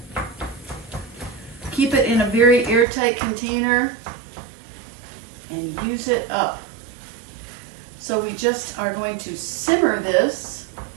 keep it in a very airtight container and use it up. So we just are going to simmer this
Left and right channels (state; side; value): drops out; left; at 2.9 s